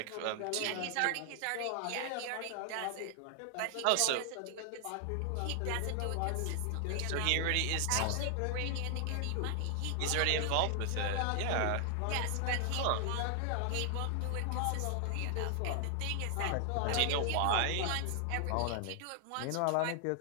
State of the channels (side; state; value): both; different; correlation 0.00